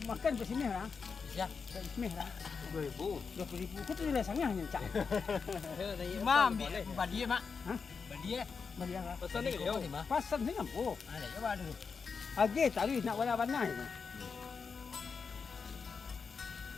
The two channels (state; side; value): quieter; right; 5.4 dB